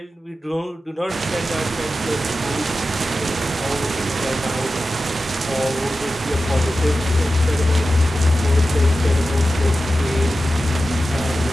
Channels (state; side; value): normal; both; correlation 0.93